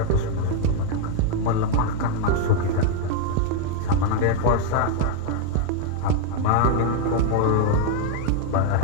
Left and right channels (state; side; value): different; both; correlation 0.00